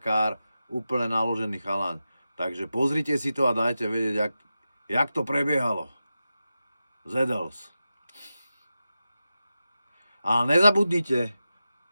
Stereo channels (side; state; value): both; inverted; correlation -0.92